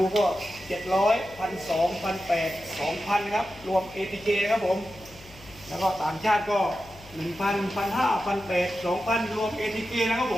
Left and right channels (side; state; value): left; noise; hum, 21 dB below the sound